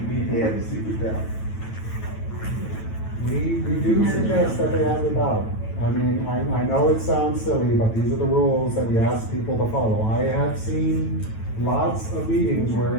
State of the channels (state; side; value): late; right; 9.1 ms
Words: need to have a secret ballot. We do suggest that they have a ballot. I mean, I know it sounds silly, but these are the rules that we ask people to follow. I have seen lots of meetings where